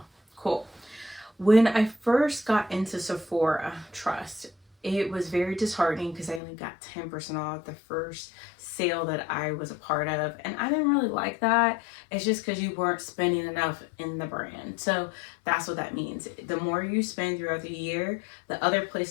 Cool. When I first got into Sephora, trust, it was very disheartening because I only got 10% off the first sale that I was a part of. And I didn't really like that. It's just because you weren't spending enough in the brand. So that's what that means. The more you spend throughout the year, the other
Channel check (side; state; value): right; drops out; at 6.4 s